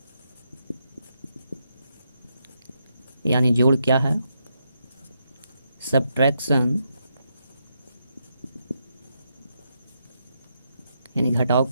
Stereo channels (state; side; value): inverted; both; correlation -0.81